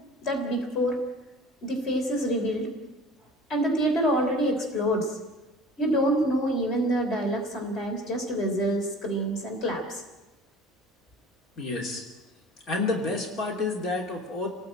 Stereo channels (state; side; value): normal; both; correlation 0.43